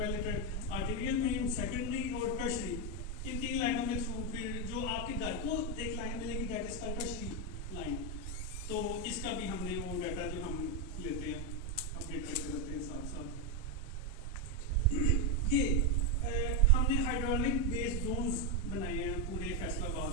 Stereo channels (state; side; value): normal; both; correlation 0.05